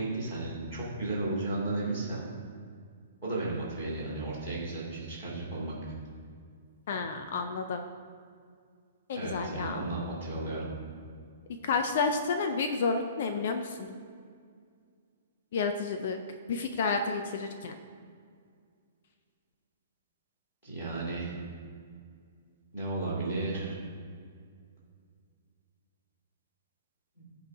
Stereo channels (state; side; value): inverted; both; correlation -0.48